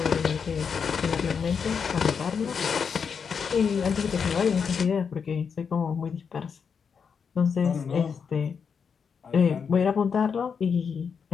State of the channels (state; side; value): quieter; right; 6.3 dB